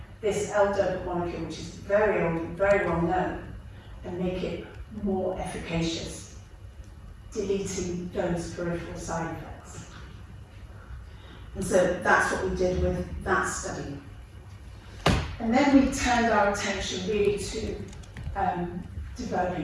this L-DOPA molecule, which is very old, very well known, and make it more efficacious, deleting those peripheral side effects. And so that's what we did with that study. And then we turned our attention really to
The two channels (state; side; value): identical; both; correlation 1.00